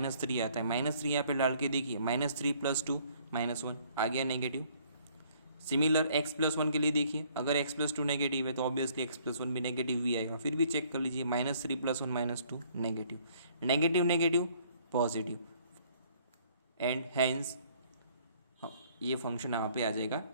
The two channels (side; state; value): both; inverted; correlation -0.62